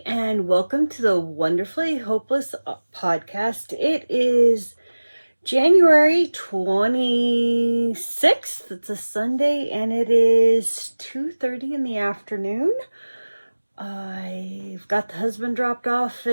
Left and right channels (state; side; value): inverted; both; correlation -1.00